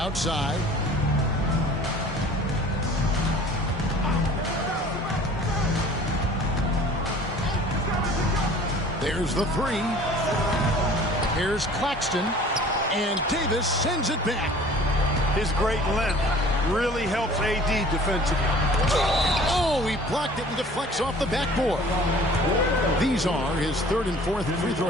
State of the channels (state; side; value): normal; both; correlation 0.48